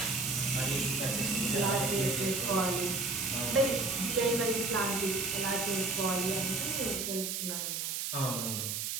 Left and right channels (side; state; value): right; noise; hiss, 2 dB below the sound